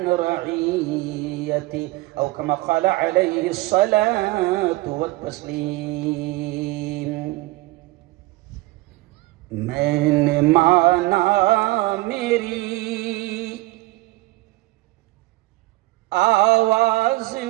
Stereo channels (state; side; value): quieter; left; 20.0 dB